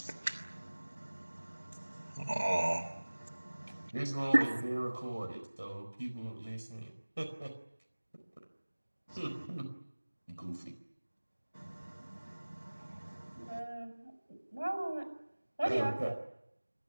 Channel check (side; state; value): both; inverted; correlation -1.00